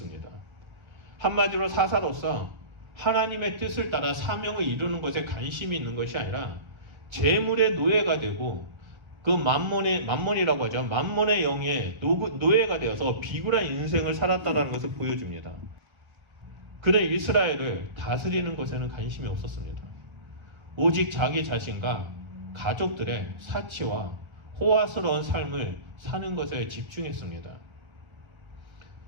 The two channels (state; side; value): late; left; 1.5 ms